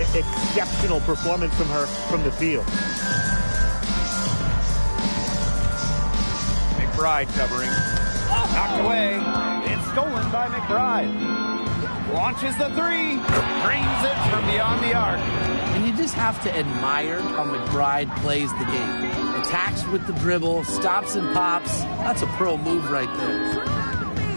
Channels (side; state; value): both; inverted; correlation -1.00